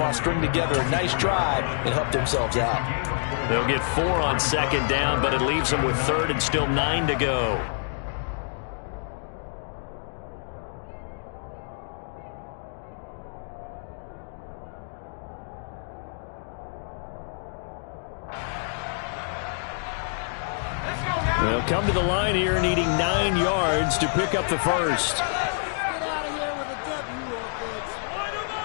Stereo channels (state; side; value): silent; right; digital silence